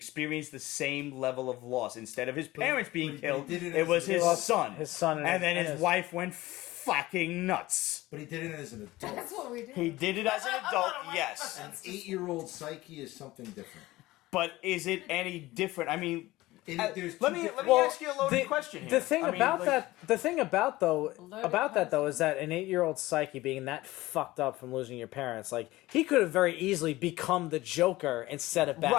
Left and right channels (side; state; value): right; quieter; 18.3 dB